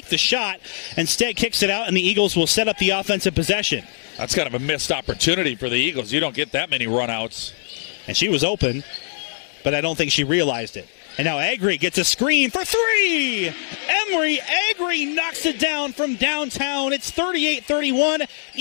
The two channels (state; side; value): silent; right; digital silence